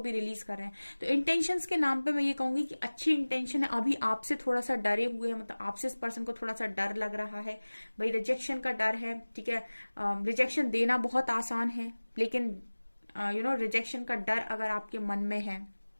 भी रिलीज कर रहे हैं। तो इंटेंशंस के नाम पे मैं ये कहूंगी कि अच्छी इंटेंशन है, अभी आपसे थोड़ा सा डरे हुए हैं, मतलब आपसे इस पर्सन को थोड़ा सा डर लग रहा है भाई, रिजेक्शन का डर है, ठीक है। रिजेक्शन देना बहुत आसान है, लेकिन रिजेक्शन का डर अगर आपके मन में है,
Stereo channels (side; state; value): both; inverted; correlation -1.00